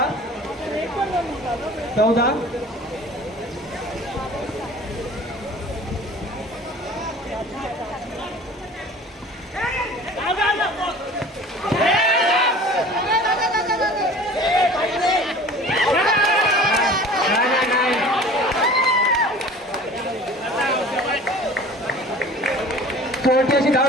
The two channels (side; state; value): both; normal; correlation 0.44